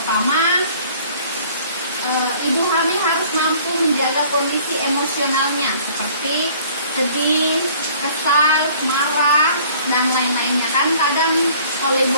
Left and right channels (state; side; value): inverted; both; correlation -0.53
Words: ibu hamil harus mampu menjaga kondisi emosionalnya seperti sedih, kesal, marah, dan lain-lainnya. Kan kadang kalau ibu